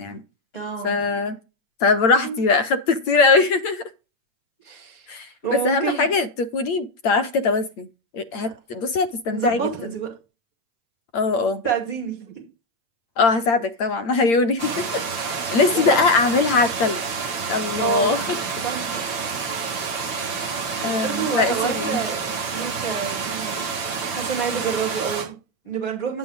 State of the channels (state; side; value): late; right; 8.7 ms